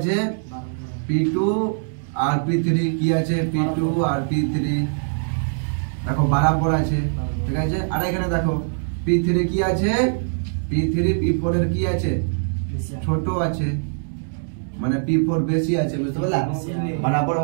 p2 আর p3 কি আছে p2 আর p3 দেখো বরাবর আছে ঠিক আছে আর এখানে দেখো p3 কি আছে p3 p4 এর কি আছে ছোট আছে মানে p4 বেশি আছে বুঝতে পারলা বরাবর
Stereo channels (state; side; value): silent; left; digital silence